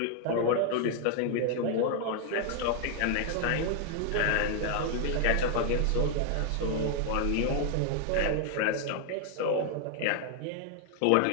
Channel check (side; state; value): both; different; correlation 0.00